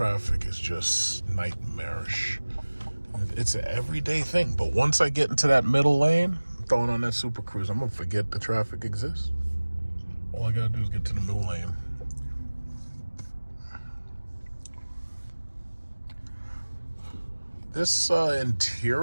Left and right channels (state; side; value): inverted; both; correlation -1.00